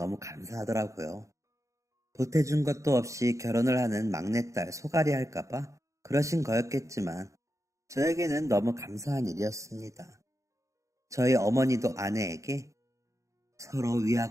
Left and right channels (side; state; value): left; late; 0.15 ms